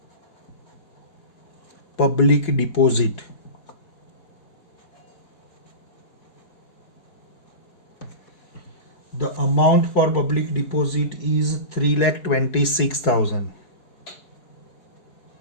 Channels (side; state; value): right; late; 4.7 ms